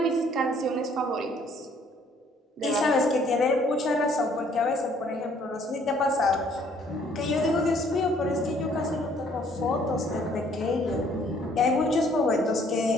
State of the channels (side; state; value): both; normal; correlation 0.62